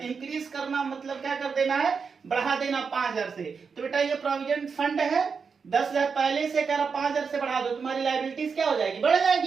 इंक्रीज करना मतलब क्या कर देना है, बढ़ा देना 5,000 से। तो बेटा ये प्रोविडेंट फंड है, 10,000 पहले से कह रहा 5,000 से बढ़ा दो, तुम्हारी लायबिलिटीज क्या हो जाएगी, बढ़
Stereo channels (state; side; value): quieter; left; 5.6 dB